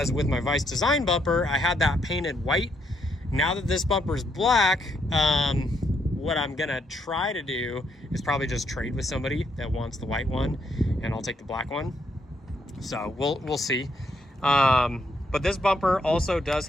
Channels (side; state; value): both; normal; correlation 0.75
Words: with my Vice Design bumper, I had that painted white. Now that this bumper is black, what I'm gonna try to do is probably just trade with somebody that wants the white one, and I'll take the black one. So we'll see. But this bumper also does